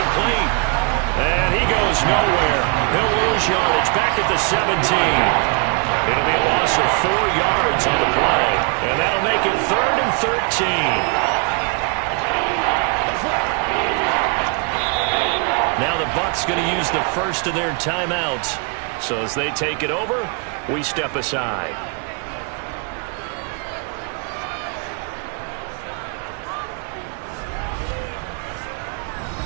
And he goes nowhere. He'll lose yardage back at the 17. It'll be a loss of 4 yards on the play. And that'll make it 3rd and 13. Now the Bucs going to use the first of their timeouts. So as they take it over, we step aside.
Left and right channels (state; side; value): quieter; left; 35.6 dB